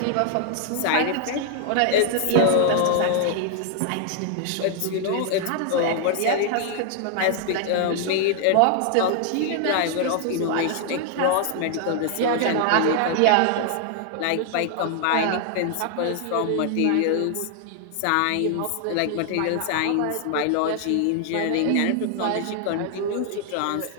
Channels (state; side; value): different; both; correlation 0.00